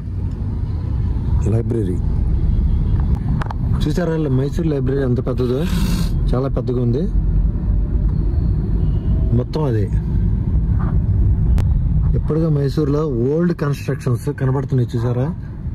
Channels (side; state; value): both; identical; correlation 1.00